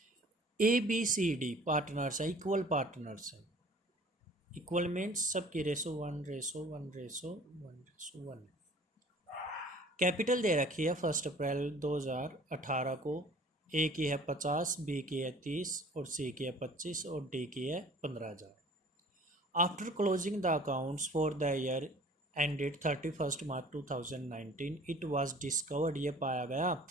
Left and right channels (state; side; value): normal; both; correlation 0.49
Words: ABCD पार्टनर्स है, इक्वल पार्टनर्स है। इक्वल मीन्स सबकी रेशो 1:1:1:1:1। कैपिटल दे रखी है 1 अप्रैल 2018 को। ए की है 50, बी की है 30 और सी की है 25 और डी की है 15,000। After closing the accounts for the year ended 31 March 2019 it was discovered, ये पाया गया,